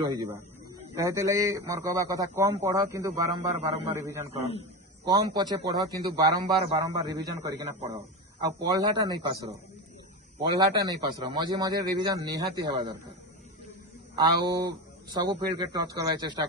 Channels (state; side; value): normal; both; correlation 0.22